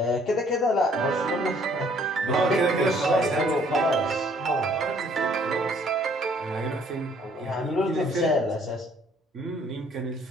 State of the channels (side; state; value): both; normal; correlation 0.61